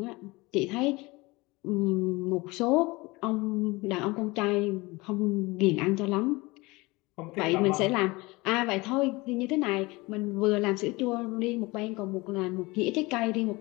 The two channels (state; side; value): quieter; right; 23.1 dB